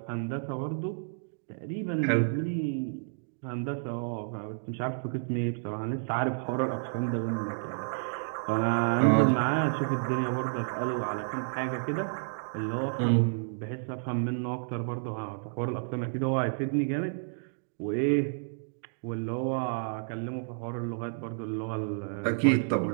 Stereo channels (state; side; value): silent; left; digital silence